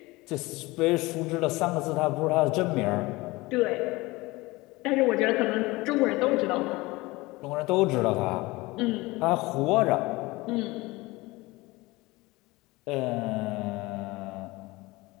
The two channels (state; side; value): quieter; right; 21.7 dB